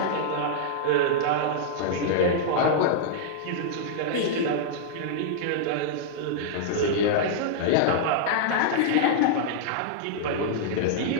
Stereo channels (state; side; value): different; both; correlation -0.02